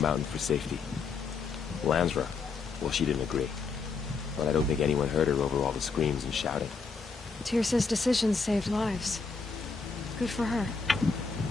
for safety. Lansra, well, she didn't agree. But I don't think anyone heard her over all the screams and shouting. Tirsa's decisions saved lives. Good for her.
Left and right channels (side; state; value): right; quieter; 4.8 dB